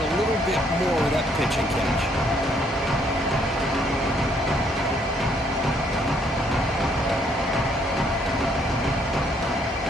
a little bit more of that pitch and catch.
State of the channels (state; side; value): normal; both; correlation 0.68